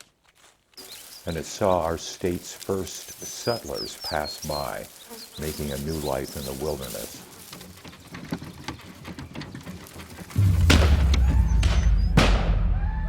And it saw our state's first settlers pass by, making a new life in the wilderness.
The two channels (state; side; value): identical; both; correlation 1.00